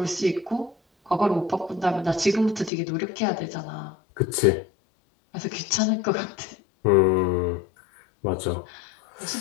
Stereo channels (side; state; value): right; drops out; at 2.7 s